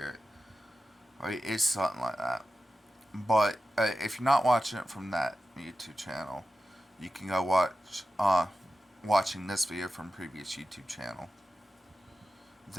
Right? It's something like that. But if you're not watching it from that YouTube channel, you can go watching this video from previous YouTube channel.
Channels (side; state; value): both; normal; correlation 0.92